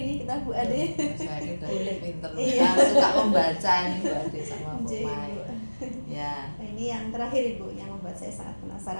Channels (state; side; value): inverted; both; correlation -1.00